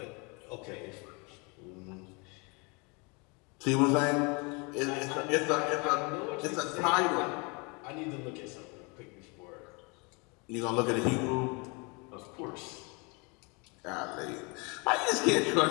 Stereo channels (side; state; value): right; quieter; 30.4 dB